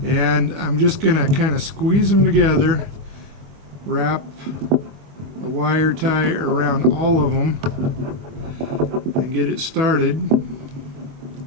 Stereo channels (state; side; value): late; left; 25 ms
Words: I'm just going to kind of squeeze them together, wrap a wire tie around all of them, and get it started.